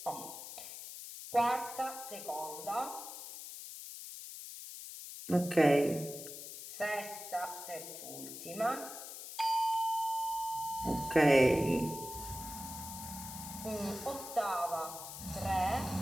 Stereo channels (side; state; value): left; noise; hiss, 10 dB below the sound